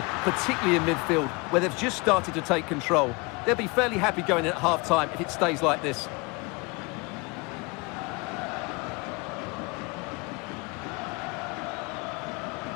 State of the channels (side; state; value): right; quieter; 27.4 dB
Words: particularly in midfield, where they've just started to take control. They'll be fairly happy going in at half-time if it stays like this.